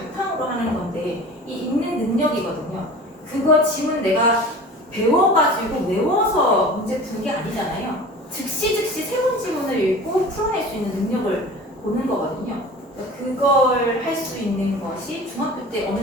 하는 건데 이 읽는 능력이거든요. 그거 지문 내가 배워가지고 외워서 문제 푸는 게 아니잖아요. 즉시 새로운 지문을 읽고 풀어낼 수 있는 능력을 보는 거거든요. 그걸 할 수 있는 것이 중학교 때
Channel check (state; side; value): normal; both; correlation 0.39